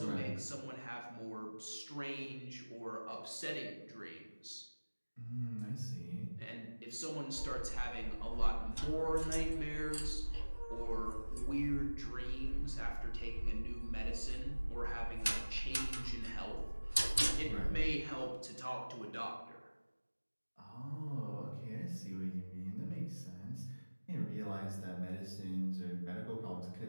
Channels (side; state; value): both; inverted; correlation -1.00